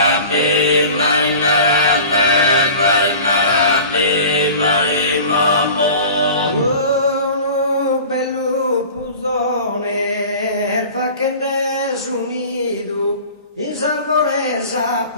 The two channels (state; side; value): inverted; both; correlation -0.40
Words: Uno bello pusone, fa che ne unido, in salvoresa